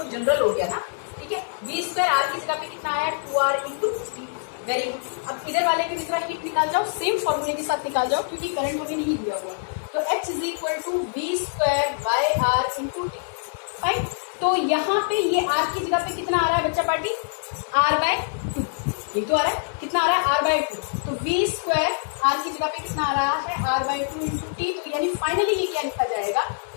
जनरल हो गया ना। ठीक है, V स्क्वायर आर की जगह पे कितना आया 2R into T. Very good, अब इधर वाले के दूसरा हीट निकाल जाओ, सेम फॉर्मूले के साथ निकाल जाओ क्योंकि करंट हमें नहीं दिया हुआ। तो H is equal to V square by R into T. Fine, तो यहाँ पे ये आर की जगह पे कितना आ रहा है बच्चा पार्टी, R बाय 2, ये तो आ रहा है, कितना आ रहा है R बाय 2। तो V स्क्वायर आर की जगह पे कितना आ रहा है R बाय 2 इंटू टी। तो यानी फाइनली ये क्या लिखा जाएगा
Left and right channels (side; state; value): right; silent; digital silence